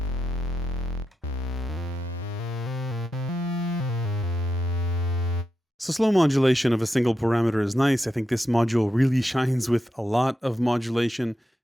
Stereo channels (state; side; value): normal; both; correlation 0.87